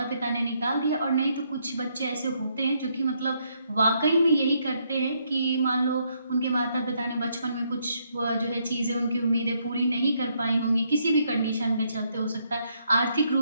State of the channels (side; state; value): both; inverted; correlation -0.74